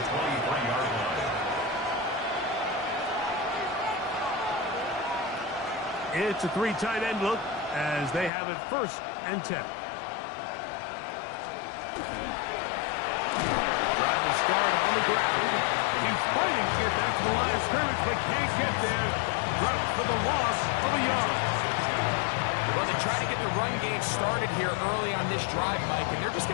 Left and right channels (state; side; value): drops out; right; at 8.3 s